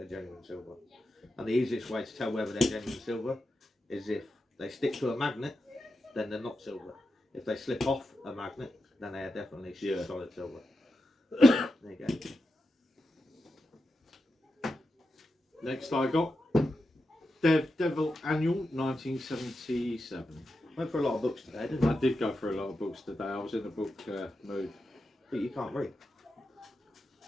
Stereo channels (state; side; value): normal; both; correlation 0.89